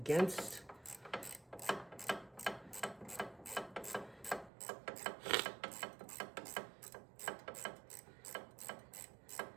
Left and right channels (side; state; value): left; drops out; at 4.5 s